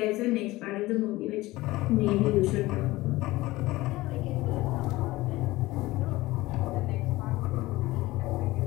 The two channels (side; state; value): right; quieter; 18.9 dB